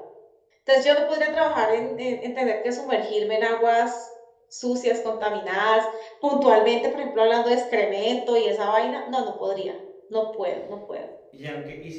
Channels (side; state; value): both; identical; correlation 1.00